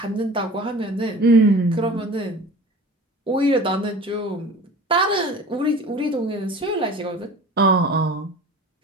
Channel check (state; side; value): normal; both; correlation 0.40